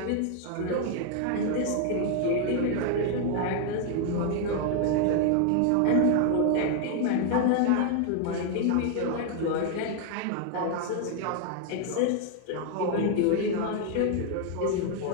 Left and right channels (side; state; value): both; different; correlation 0.00